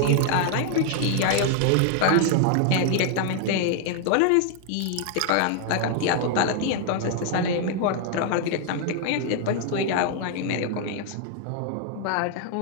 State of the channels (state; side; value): different; both; correlation 0.00